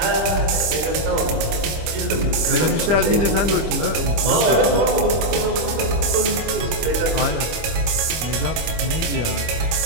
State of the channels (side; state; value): left; late; 25 ms